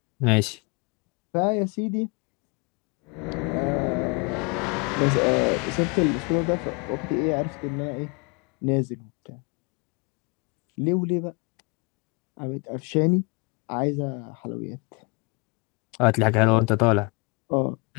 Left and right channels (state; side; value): quieter; right; 31.1 dB